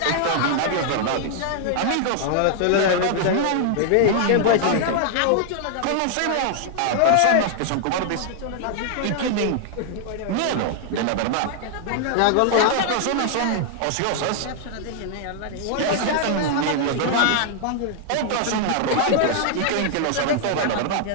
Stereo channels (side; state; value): both; different; correlation -0.01